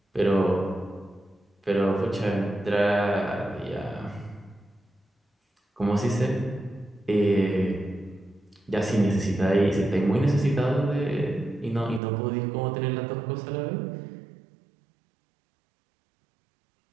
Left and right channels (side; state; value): left; drops out; at 12.0 s